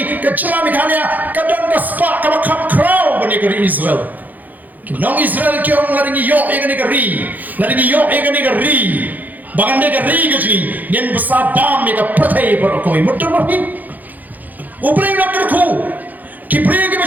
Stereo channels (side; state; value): left; late; 0.082 ms